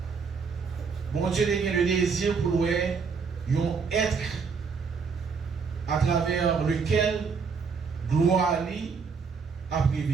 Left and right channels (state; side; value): quieter; left; 5.4 dB